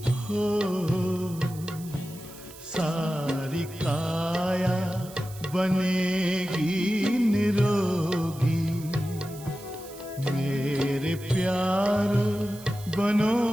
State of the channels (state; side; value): noise; right; hiss, 18 dB below the sound